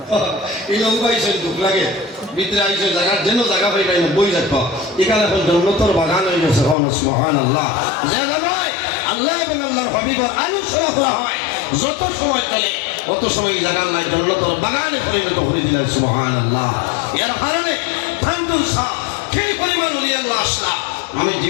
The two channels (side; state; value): right; drops out; at 6.8 s